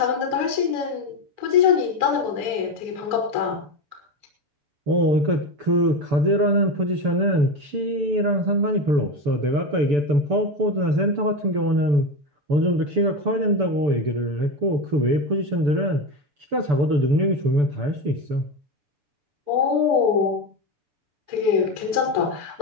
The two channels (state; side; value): late; left; 6.9 ms